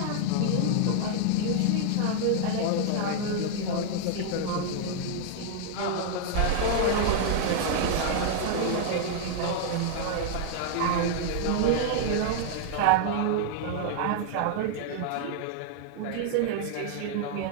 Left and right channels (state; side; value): different; both; correlation 0.00